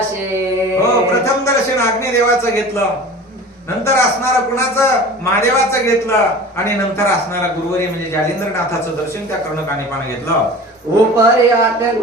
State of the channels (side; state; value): both; normal; correlation 0.39